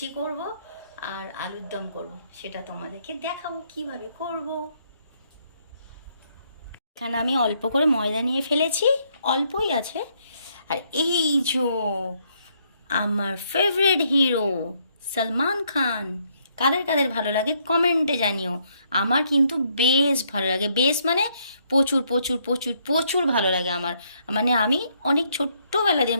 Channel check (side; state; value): both; inverted; correlation -0.71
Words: করব আর আলুর দম করব, সেটা তোমাদেরকে দেখাবো কিভাবে করব। এখানে আমি অল্প করে ময়দা নিয়ে ফেলেছি, অল্পই আছে। আর এই যে আমার ফেভারিট হিরো সলমান খান, কাদের কাদের ভালো লাগে কমেন্টে জানিও। আমার কিন্তু বেশ ভালো লাগে, বেশ মানে প্রচুর প্রচুর প্রচুর প্রচুর ভালো লাগে আমার। মানে আমি অনেক ছোট্টবেলা দিয়ে